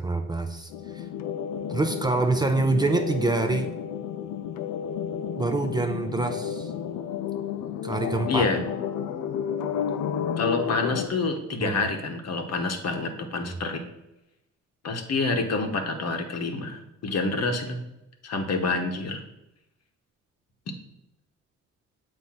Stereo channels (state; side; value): normal; both; correlation 0.33